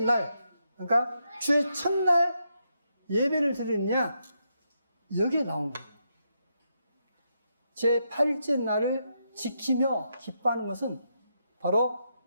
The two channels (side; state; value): both; inverted; correlation -0.81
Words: 날 그러니까 주의 첫날 예배를 드리느냐 여기에 나온 거예요. 제 8일째 날을 지키며 기뻐하는 것은 바로